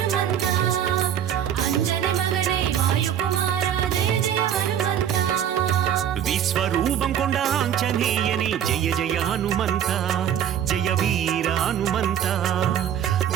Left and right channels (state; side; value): quieter; left; 9.6 dB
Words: ஹனுமந்தா ஜெய வீர ஹனுமந்தா